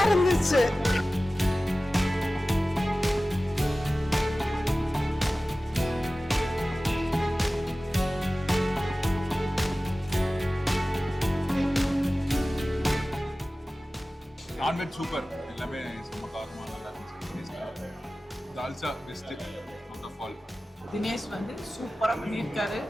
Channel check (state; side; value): normal; both; correlation 0.96